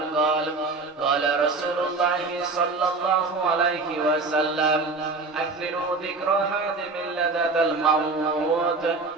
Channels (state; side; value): quieter; left; 3.8 dB